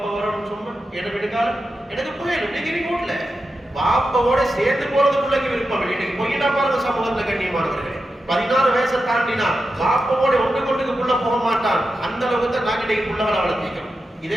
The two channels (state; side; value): normal; both; correlation 0.90